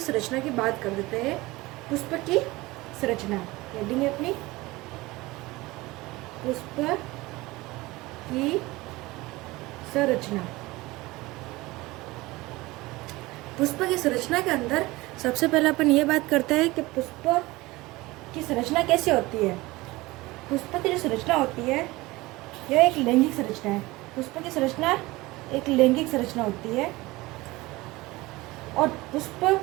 संरचना की बात कर देते हैं। पुष्प की संरचना हेडिंग है अपनी, पुष्प की संरचना। पुष्प की संरचना के अंदर सबसे पहले अपन ये बात करते हैं कि पुष्प की संरचना कैसे होती है। पुष्प की जो संरचना होती है यह एक लैंगिक संरचना है। पुष्प की संरचना एक लैंगिक संरचना होती है और पुष्प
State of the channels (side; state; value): left; quieter; 20.6 dB